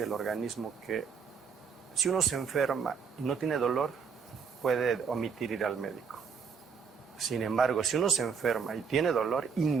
del organismo que si uno se enferma y no tiene dolor, puede omitir ir al médico. Sin embargo, si uno se enferma y tiene dolor,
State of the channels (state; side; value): quieter; left; 6.0 dB